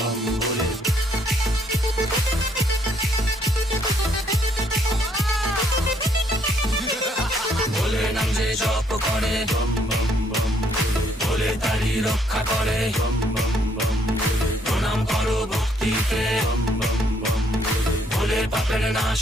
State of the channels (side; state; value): both; normal; correlation 0.68